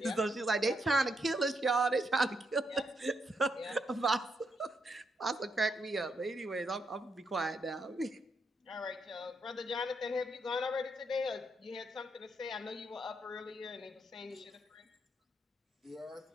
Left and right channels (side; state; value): both; normal; correlation 0.79